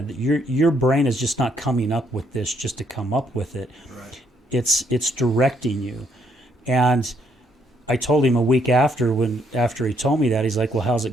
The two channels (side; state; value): both; normal; correlation 0.72